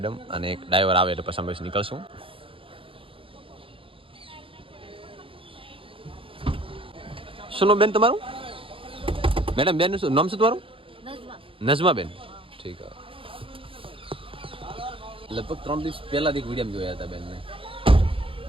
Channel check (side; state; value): left; late; 0.26 ms